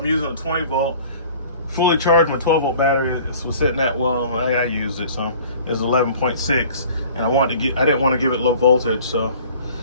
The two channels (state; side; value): inverted; both; correlation -0.48